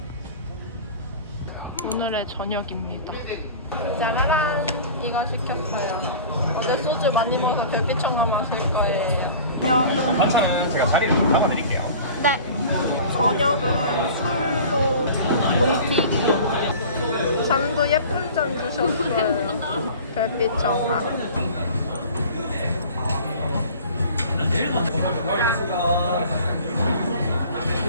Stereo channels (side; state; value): both; inverted; correlation -0.41